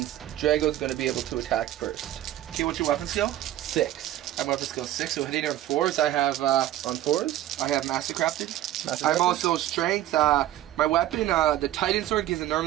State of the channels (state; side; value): quieter; left; 13.3 dB